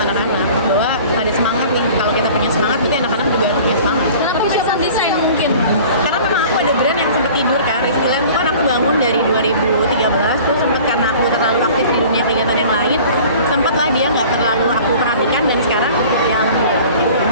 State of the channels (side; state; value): both; inverted; correlation -0.45